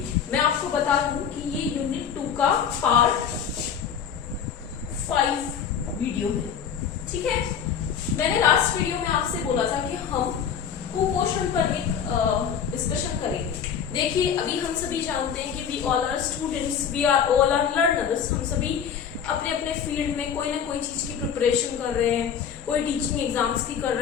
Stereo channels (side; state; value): right; quieter; 7.8 dB